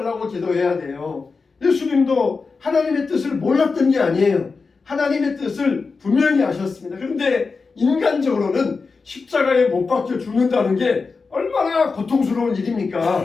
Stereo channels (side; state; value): right; quieter; 4.5 dB